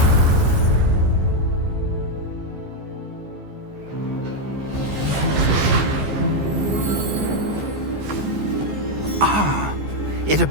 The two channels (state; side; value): late; left; 14 ms